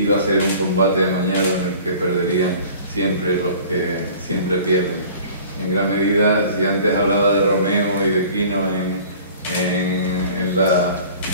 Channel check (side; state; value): both; inverted; correlation -0.47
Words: a ser un combate amañado en el que perderían siempre los que siempre pierden. En gran medida, si antes hablaba de Romeo y de Quino en